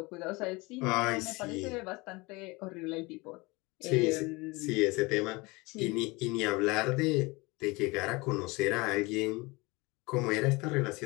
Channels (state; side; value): quieter; right; 24.5 dB